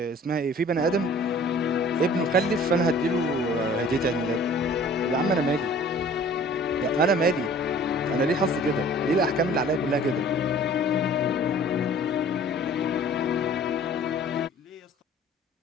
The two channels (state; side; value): normal; both; correlation 0.50